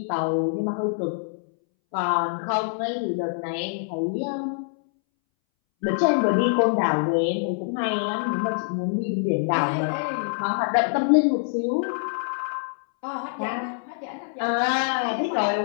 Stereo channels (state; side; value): silent; right; 62 dB below the other